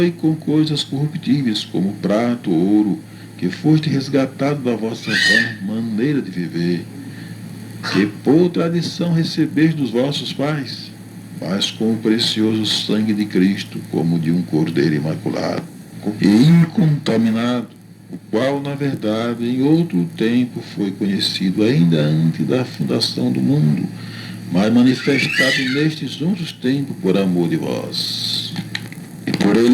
com coisas corruptíveis, como prata ou ouro, que foste resgatado da vossa maneira de viver, que por tradição recebeste dos vossos pais, mas com o precioso sangue de Cristo, como de um cordeiro imaculado e incontaminado, o qual, na verdade, em outro tempo foi conhecido ainda antes da fundação do mundo, mas manifestado nestes outros tempos por amor de vós. E por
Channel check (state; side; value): identical; both; correlation 1.00